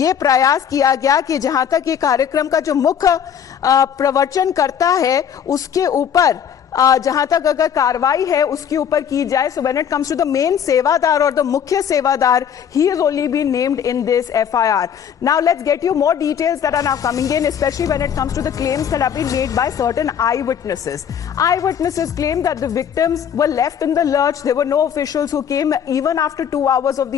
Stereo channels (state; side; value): quieter; right; 8.4 dB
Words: प्रयास किया गया कि जहां तक ये कार्यक्रम का जो मुख्य प्रवचन करता है उसके ऊपर जहां तक अगर कार्रवाई है उसके ऊपर की जाए. So when it comes to the main sevadar or the mukhya sevadar, he has only been named in this FIR. Now let's get you more details that are now coming in, especially when it comes to the claims that have been made by certain eyewitnesses. Eyewitnesses claim that the victims were left in the lurch. There were no officials who came even after 2 hours of